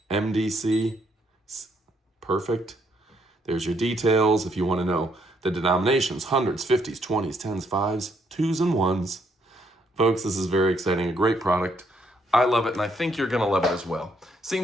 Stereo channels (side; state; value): both; normal; correlation 0.72